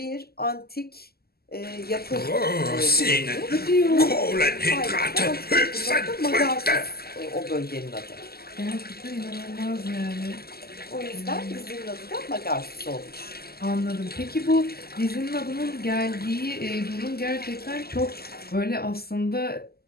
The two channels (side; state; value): right; late; 0.45 ms